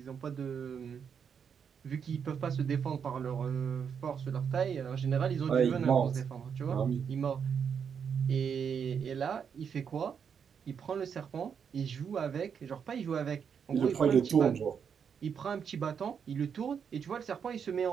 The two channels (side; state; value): left; quieter; 7.1 dB